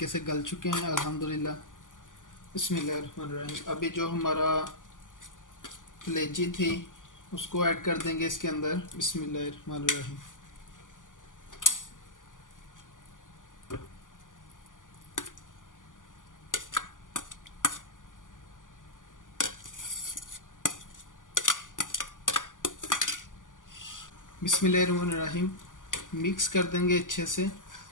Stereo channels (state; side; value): late; right; 0.88 ms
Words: से गल चुके हैं अल्हम्दुलिल्लाह। बिस्मिल्लाहिर्रहमानिर्रहीम। अभी जो हमारा कलेजी थी उसको ऐड कर देंगे इसके अंदर। बिस्मिल्लाहिर्रहमानिर्रहीम। बिस्मिल्लाहिर्रहमानिर्रहीम। मिक्स कर देंगे अच्छे से।